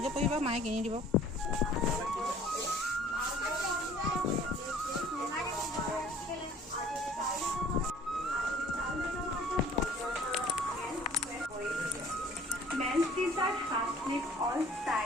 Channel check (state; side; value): normal; both; correlation 0.52